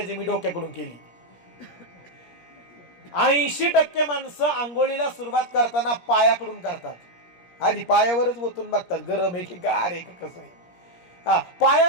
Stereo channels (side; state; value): right; late; 17 ms